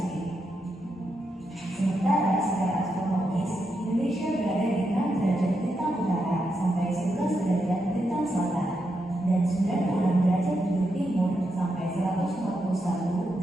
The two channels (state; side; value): normal; both; correlation 0.84